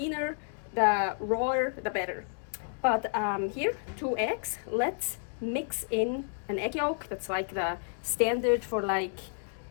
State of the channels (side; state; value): right; silent; digital silence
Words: the rawer, the better. But here, 2 eggs. Let's mix in an egg yolk. That's like the standard for like